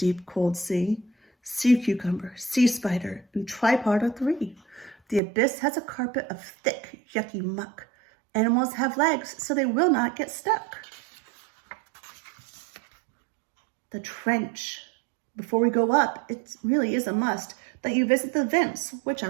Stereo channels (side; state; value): left; drops out; at 5.2 s